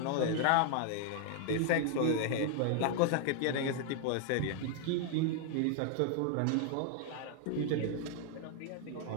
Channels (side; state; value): both; different; correlation 0.00